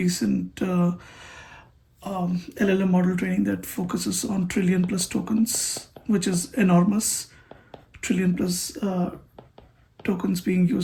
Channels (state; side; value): identical; both; correlation 1.00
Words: LLM model training that focuses on trillion plus tokens, which is enormous. Trillion plus tokens being